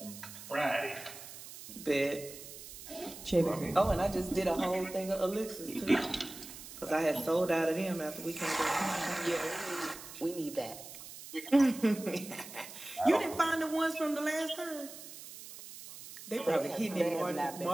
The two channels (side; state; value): right; noise; hiss, 14 dB below the sound